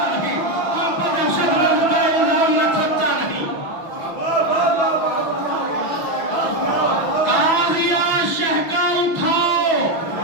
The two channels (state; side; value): late; right; 6.1 ms